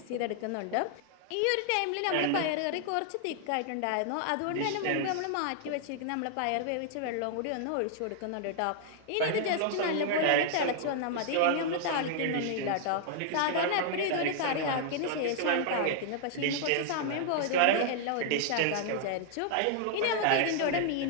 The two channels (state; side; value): different; both; correlation -0.01